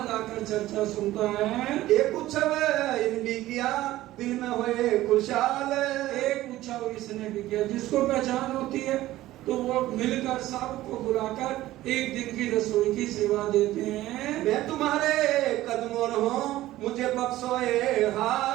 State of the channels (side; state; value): left; quieter; 15.6 dB